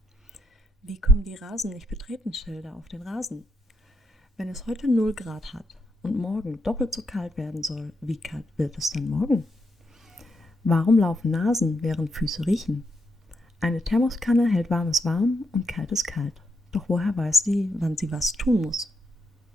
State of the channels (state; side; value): normal; both; correlation 0.80